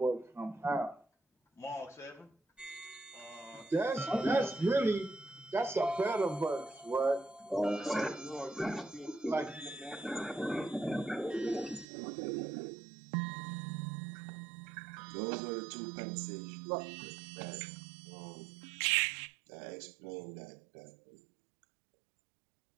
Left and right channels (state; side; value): drops out; left; at 11.9 s